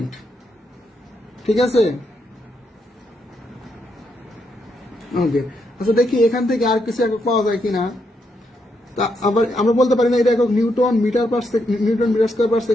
ঠিক আছে, ওকে। আচ্ছা দেখি এখান থেকে আর কিছু একক পাওয়া যায় কিনা। তা আবার আমরা বলতে পারি না এটা একক newton metre per newton metre square per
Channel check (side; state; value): both; normal; correlation 0.79